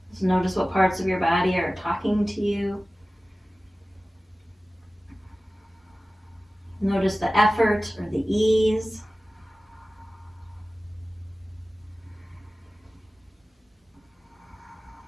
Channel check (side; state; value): both; normal; correlation 0.96